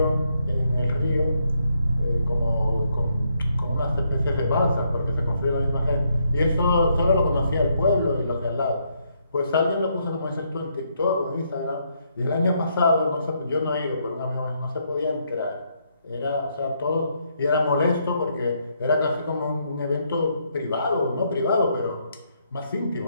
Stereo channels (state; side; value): inverted; both; correlation -0.75